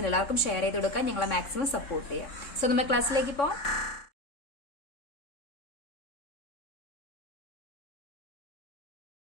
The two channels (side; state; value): right; late; 3.6 ms